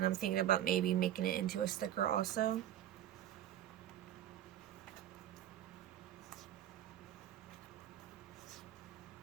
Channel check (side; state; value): left; quieter; 11.8 dB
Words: I'm thinking about maybe making it into a sticker also.